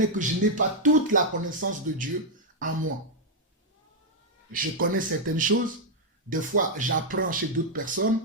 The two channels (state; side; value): normal; both; correlation -0.02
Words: que je n'ai pas toute la connaissance de Dieu en moi. Je connais certaines choses, des fois j'apprends chez d'autres personnes,